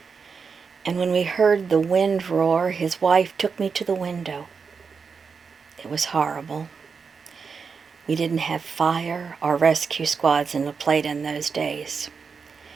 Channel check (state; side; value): quieter; left; 5.5 dB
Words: And when we heard the wind roar, his wife took me to the window. It was horrible. We didn't have fire or rescue squads in La Plata in those days.